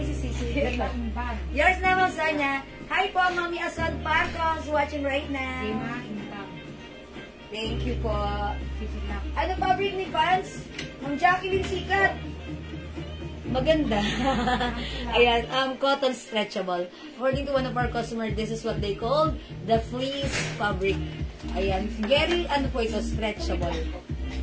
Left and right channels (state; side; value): identical; both; correlation 1.00